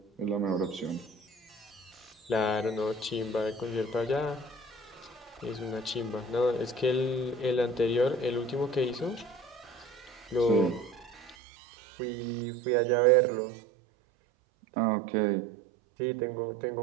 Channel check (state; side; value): drops out; left; at 11.4 s